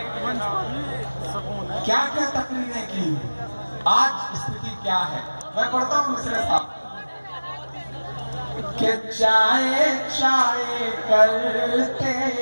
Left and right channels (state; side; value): inverted; both; correlation -1.00